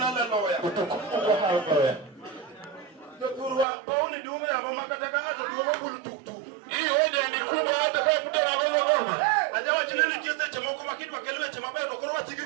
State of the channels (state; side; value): drops out; left; at 3.7 s